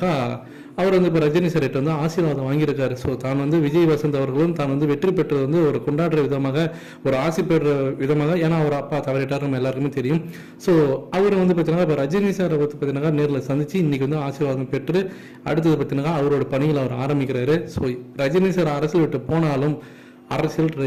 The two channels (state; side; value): identical; both; correlation 1.00